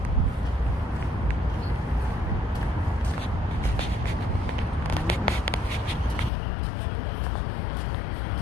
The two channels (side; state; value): right; drops out; at 6.3 s